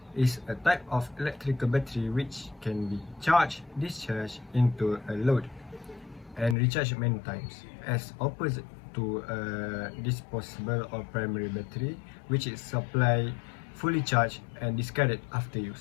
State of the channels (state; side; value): drops out; right; at 6.6 s